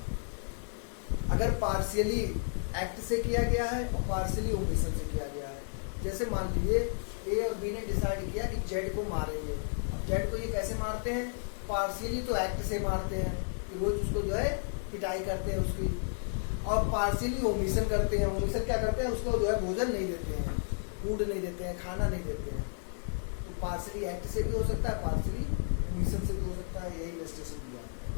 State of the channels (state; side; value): silent; right; digital silence